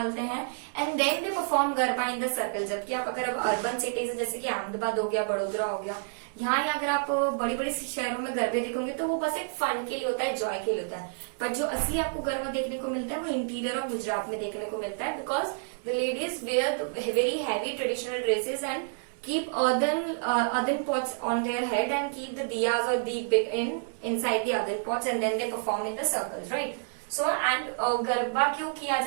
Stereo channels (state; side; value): silent; left; digital silence